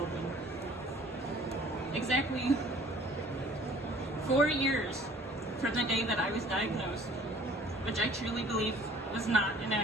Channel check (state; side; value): normal; both; correlation 0.52